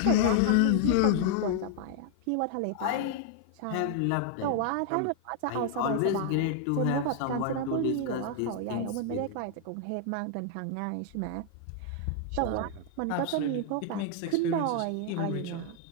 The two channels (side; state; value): both; different; correlation 0.00